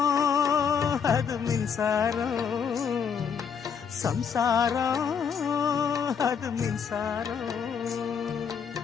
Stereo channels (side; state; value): right; quieter; 6.9 dB